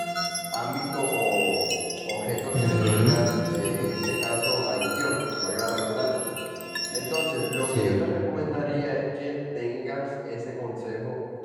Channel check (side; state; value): both; identical; correlation 1.00